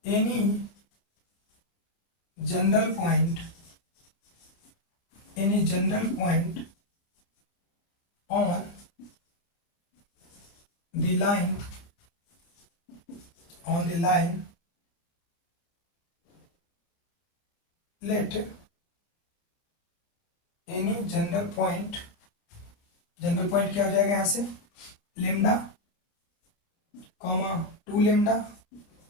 any general point on the line let any general point क्या हो जाएगा यहाँ से, लेमडा कॉमा 2 लेमडा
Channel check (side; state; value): right; late; 30 ms